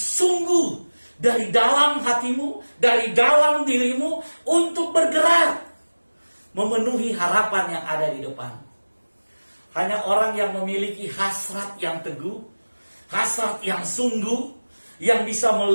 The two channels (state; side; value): inverted; both; correlation -1.00